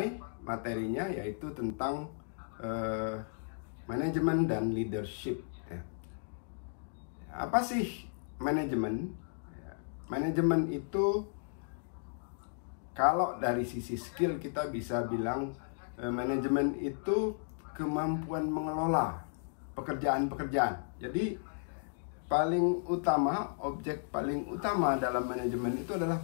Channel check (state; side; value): silent; right; digital silence